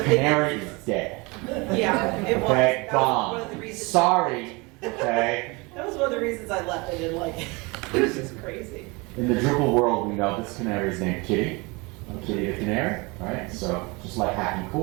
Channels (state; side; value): quieter; left; 26.7 dB